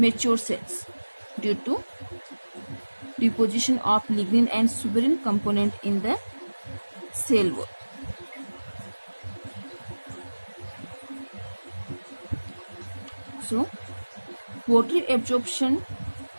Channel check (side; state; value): both; inverted; correlation -1.00